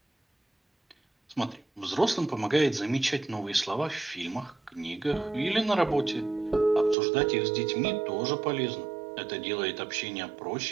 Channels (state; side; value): drops out; left; at 7.0 s